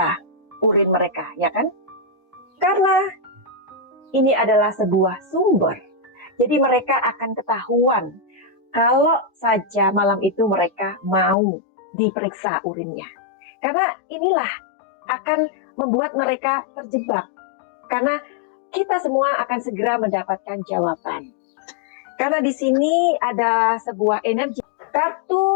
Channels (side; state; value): right; drops out; at 11.4 s